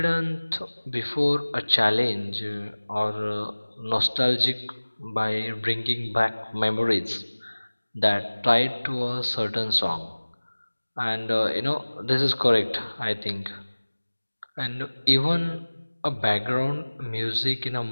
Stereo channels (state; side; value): inverted; both; correlation -1.00